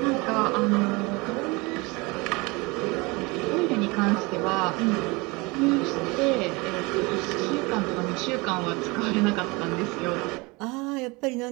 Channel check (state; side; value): quieter; left; 25.6 dB